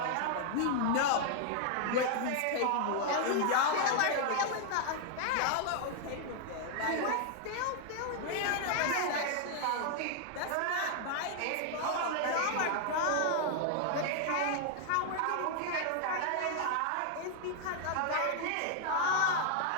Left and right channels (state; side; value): different; both; correlation 0.00